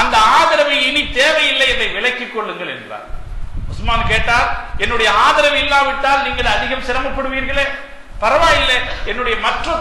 அந்த ஆதரவை இனி தேவையில்லை, இதை விலக்கிக் கொள்ளுங்கள் என்றார். உஸ்மான் கேட்டார், என்னுடைய ஆதரவு இல்லாவிட்டால் நீங்கள் அதிகம் சிரமப்படுவீர்களே, பரவாயில்லை, என்னுடைய மற்ற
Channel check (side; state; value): both; identical; correlation 1.00